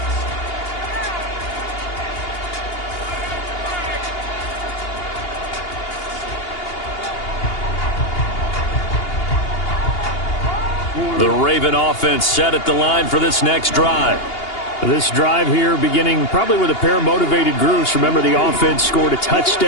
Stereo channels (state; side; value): late; right; 2.8 ms